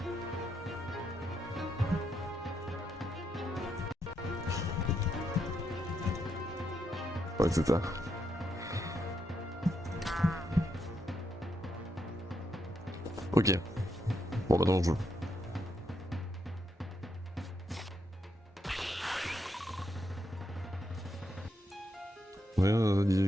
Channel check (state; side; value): normal; both; correlation 0.80